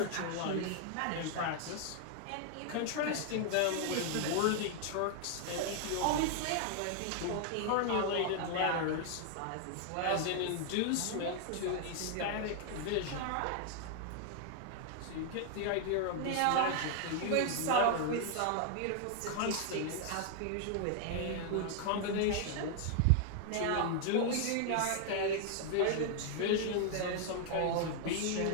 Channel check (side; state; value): both; different; correlation 0.00